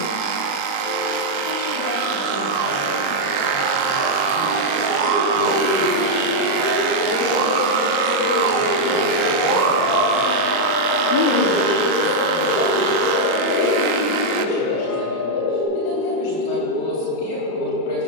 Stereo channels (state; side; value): late; right; 36 ms